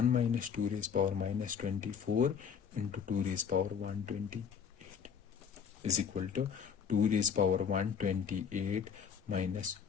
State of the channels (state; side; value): quieter; right; 7.0 dB